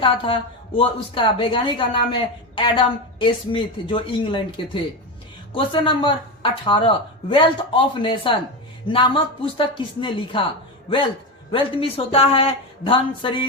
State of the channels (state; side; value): normal; both; correlation 0.17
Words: था? वो उसका वैज्ञानिक का नाम है एडम स्मिथ, जो इंग्लैंड के थे। Question number 18, wealth of nation नामक पुस्तक किसने लिखा? वेल्थ मीन्स होता है धन,